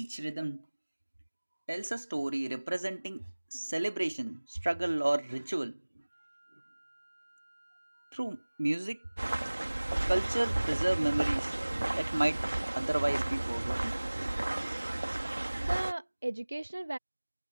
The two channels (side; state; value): both; inverted; correlation -1.00